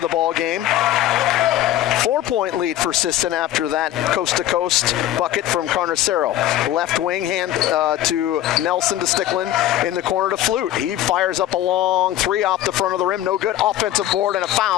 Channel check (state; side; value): quieter; right; 13.0 dB